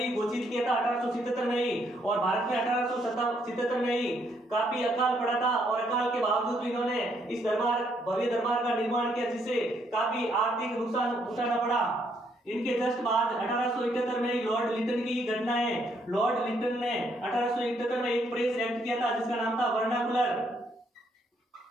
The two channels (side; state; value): both; normal; correlation 0.72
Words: घोषित किया था 1877 में ही। और भारत में 1877 में ही काफी अकाल पड़ा था और अकाल के बावजूद भी इन्होंने इस भव्य दरबार का निर्माण किया जिससे काफी आर्थिक नुकसान उठाना पड़ा। इनके जस्ट बाद 1871 में ही लॉर्ड लिटन की घटना है। लॉर्ड लिटन ने 1871 में एक प्रेस एक्ट किया था जिसका नाम था वर्नाकुलर।